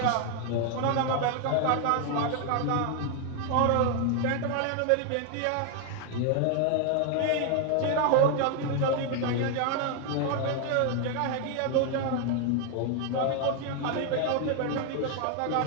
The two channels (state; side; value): different; both; correlation 0.00